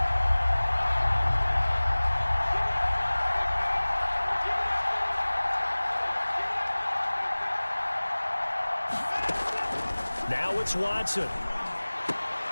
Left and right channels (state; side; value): inverted; both; correlation -1.00